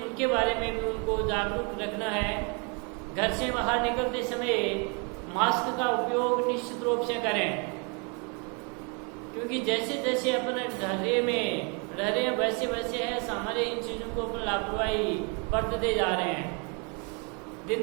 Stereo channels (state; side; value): quieter; left; 34.8 dB